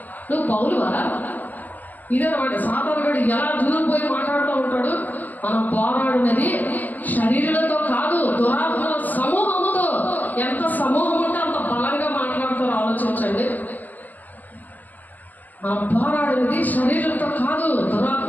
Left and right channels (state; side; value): late; right; 0.082 ms